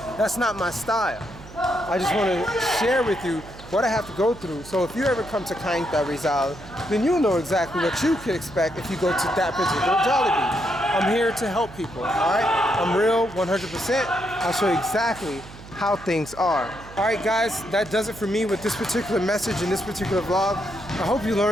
That's not my style. I just want to share with you what I have to go through. So if you ever come to Cainta, Rizal, then you'll know exactly what you could expect if you go to that particular Jollibee. I'm here to help people, all right? I'm real, 100%. I'll show you exactly how things are. All right, guys, that does it for me with this particular message in this particular vlog. I hope you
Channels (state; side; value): noise; right; hum, 17 dB below the sound